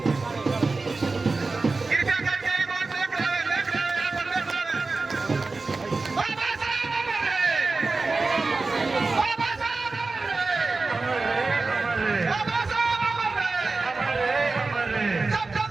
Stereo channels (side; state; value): left; quieter; 3.8 dB